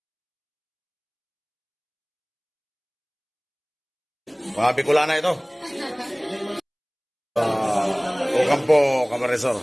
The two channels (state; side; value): identical; both; correlation 1.00